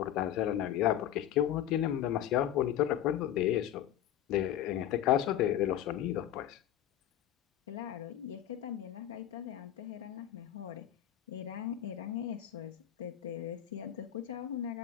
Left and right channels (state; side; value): quieter; right; 11.5 dB